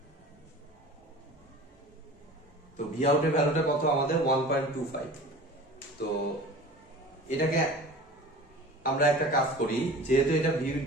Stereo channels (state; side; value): normal; both; correlation 0.39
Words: তো ভি আউটের ভ্যালুটা কত আমাদের 1.25। তো এটাকে আমরা একটা কাজ করি, যেহেতু এটা ভি